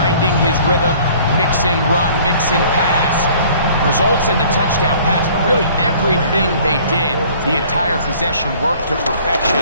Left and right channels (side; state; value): both; inverted; correlation -0.53